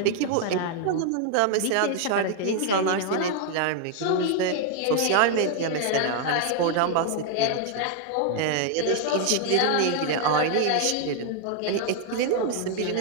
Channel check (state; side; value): different; both; correlation 0.00